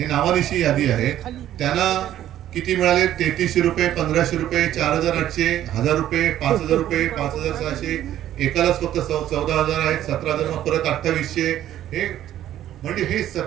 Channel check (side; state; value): left; quieter; 12.2 dB